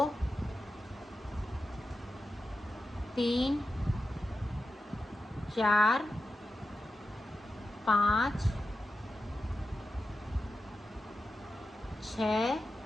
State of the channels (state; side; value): normal; both; correlation 0.91